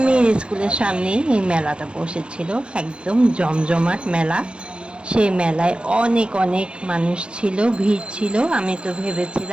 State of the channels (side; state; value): left; late; 0.057 ms